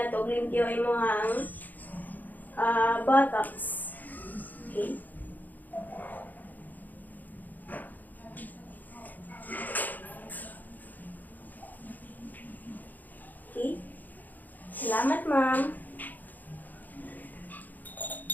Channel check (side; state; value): right; late; 0.084 ms